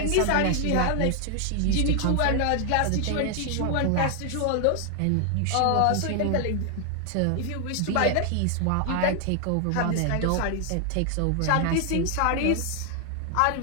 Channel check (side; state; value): both; different; correlation 0.00